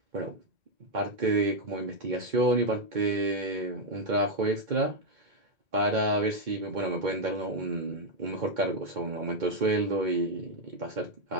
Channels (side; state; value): left; late; 2.2 ms